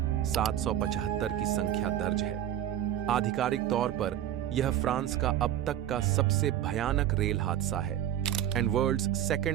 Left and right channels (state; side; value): quieter; left; 11.3 dB